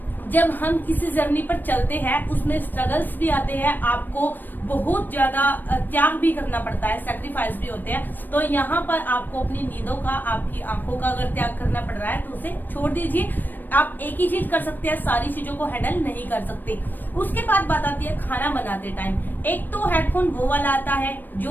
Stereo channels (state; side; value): late; right; 0.091 ms